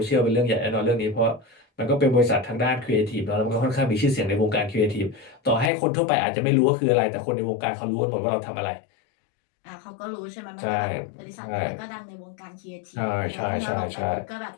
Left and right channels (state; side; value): drops out; right; at 5.7 s